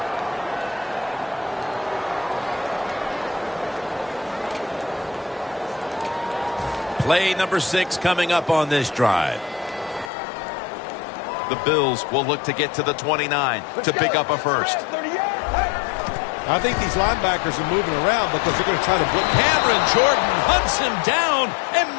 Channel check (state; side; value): drops out; right; at 10.1 s